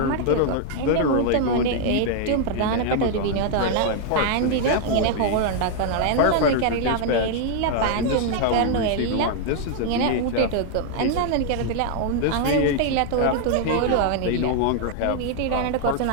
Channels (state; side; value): different; both; correlation 0.00